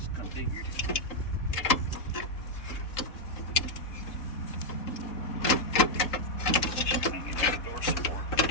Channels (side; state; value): right; late; 3.8 ms